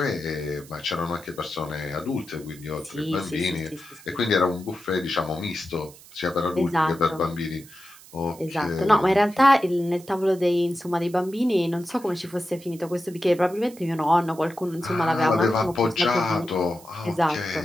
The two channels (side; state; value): right; noise; hiss, 21 dB below the sound